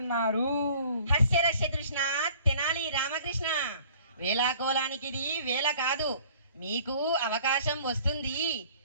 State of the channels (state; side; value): inverted; both; correlation -0.52